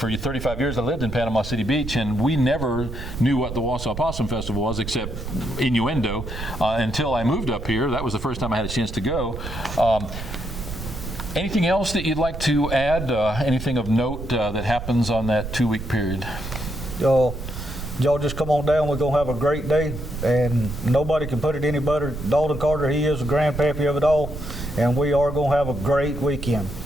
35 years, I lived in Panama City Beach, and we never knew what the Wausau Possum Festival was except innuendo until I moved up here. That was the first time I had a chance to go. Anything else that you'd like to add? Anything of note that happens on that 2-week period? Y'all just come on down. We're going to have a great day, and nobody can put it any better. Dalton Carter, he is the grandpappy of it all, and we are going to have a great weekend.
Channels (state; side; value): noise; right; rumble, 8 dB below the sound